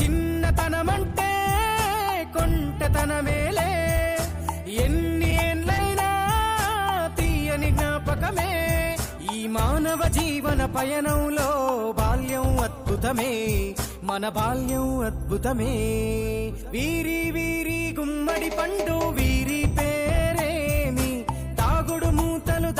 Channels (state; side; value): identical; both; correlation 1.00